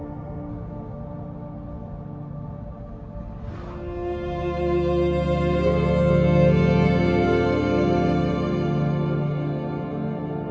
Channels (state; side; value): identical; both; correlation 1.00